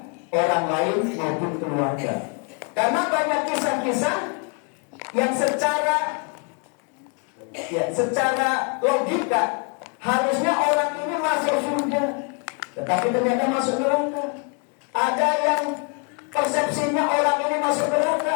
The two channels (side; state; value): right; quieter; 38.7 dB